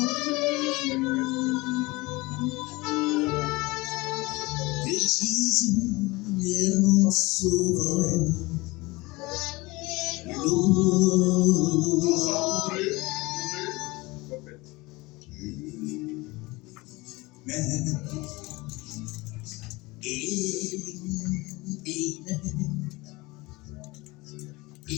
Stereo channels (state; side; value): quieter; right; 22.7 dB